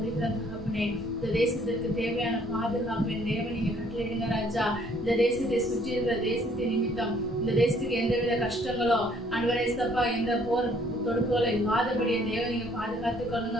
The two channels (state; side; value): normal; both; correlation 0.62